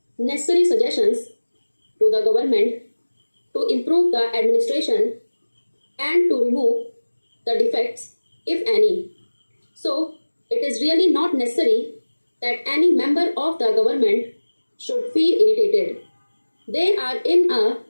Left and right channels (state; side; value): inverted; both; correlation -1.00